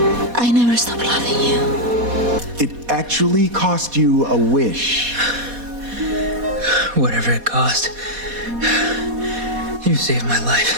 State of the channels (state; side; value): late; left; 4.2 ms